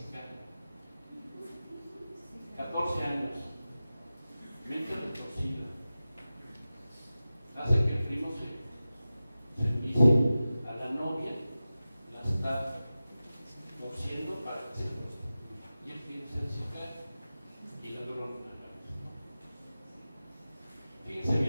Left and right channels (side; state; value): both; inverted; correlation -0.95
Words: 14 años, mente retorcida, hace que el primo se envicie a la novia